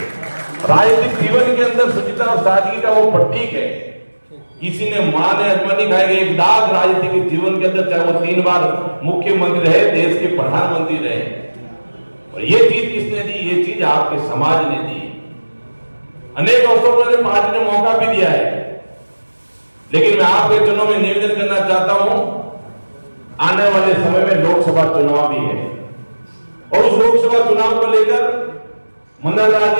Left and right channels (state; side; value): inverted; both; correlation -1.00